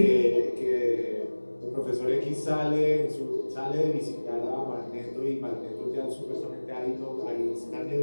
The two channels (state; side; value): inverted; both; correlation -1.00